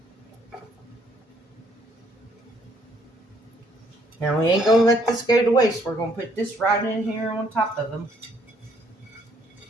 Now we ain't going to let this go to waste. We're going to put this right in here on top of them.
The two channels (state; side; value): normal; both; correlation 0.66